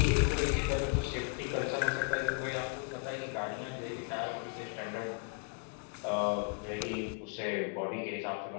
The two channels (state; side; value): quieter; right; 39.9 dB